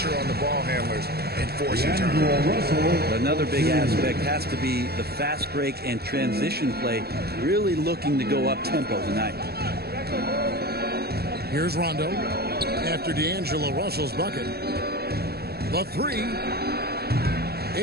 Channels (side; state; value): left; late; 0.46 ms